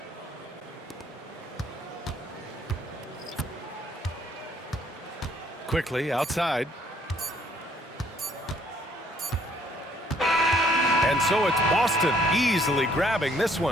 Quickly outside. And so it's Boston easily grabbing this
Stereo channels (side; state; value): both; normal; correlation 0.64